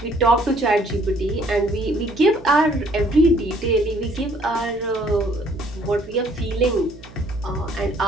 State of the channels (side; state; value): right; noise; hum, 20 dB below the sound